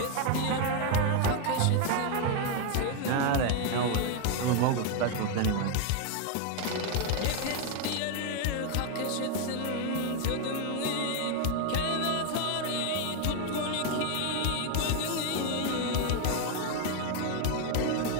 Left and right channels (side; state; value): both; different; correlation 0.01